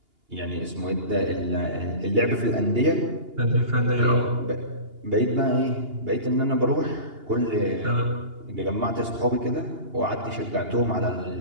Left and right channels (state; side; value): late; left; 2.8 ms